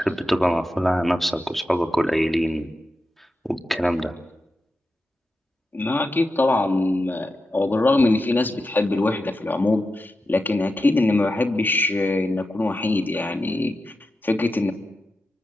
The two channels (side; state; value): both; normal; correlation 0.90